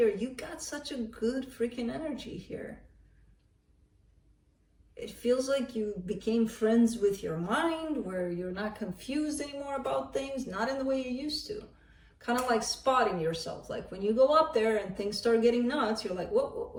You got such a good freaking energy here. It feels like you became friends with your mind, where you're not confused anymore about things, not in the way you used to. Kind of like spotting yourself. Like when you go up there and things start getting nuts, you're like,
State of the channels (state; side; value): identical; both; correlation 1.00